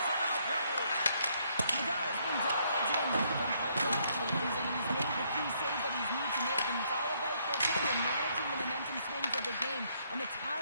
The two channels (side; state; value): both; inverted; correlation -0.70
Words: on the play. Nadal's been dialed in from puck-off, James. I mean, he's made the key save that he's needed to make, and it's all about, for a tender, managing the momentum swings of the game, and the